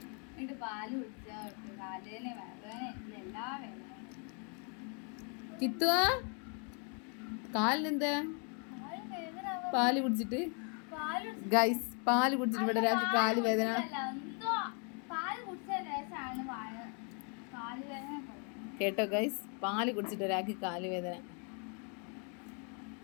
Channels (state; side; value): quieter; right; 38.4 dB